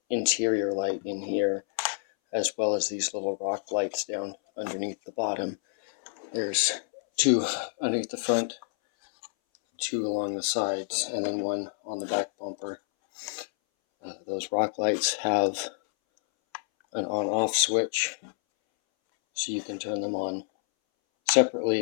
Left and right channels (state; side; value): silent; right; 59 dB below the other